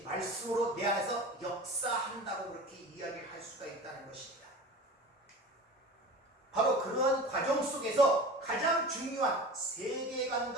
말씀으로 내 안에서 역사한다고 그렇게 이야기를 할 수가 있다는 것입니다. 바로 그러한 과정 속에서 가장 중요한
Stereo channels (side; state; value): both; normal; correlation 0.35